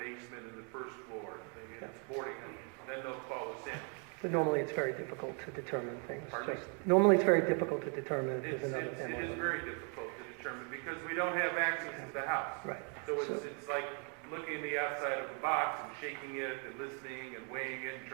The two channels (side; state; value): left; quieter; 39.0 dB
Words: and the first floor. It's boarding house. Then they'll call us in. But normally it's very difficult to determine things. Pardon me? Normally it's very difficult to determine if there's another It family. is very difficult to determine because we don't have access to the house. Right. So it's like looking in the outside of the box and shaking it and listening and weighing it and